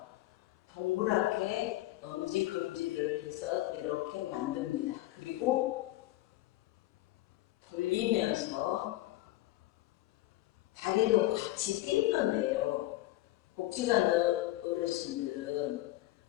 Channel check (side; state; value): right; quieter; 17.0 dB